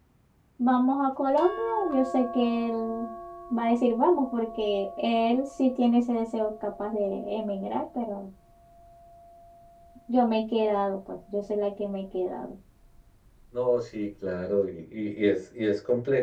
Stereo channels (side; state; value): both; identical; correlation 1.00